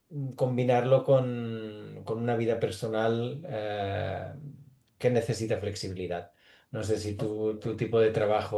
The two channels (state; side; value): identical; both; correlation 1.00